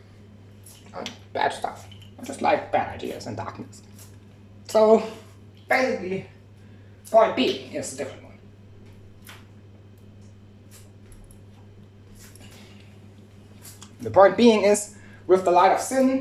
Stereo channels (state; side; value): identical; both; correlation 1.00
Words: And bad stuff. I just like bad ideas and darkness. So, basically, point B is a different one. The point being is, with the light of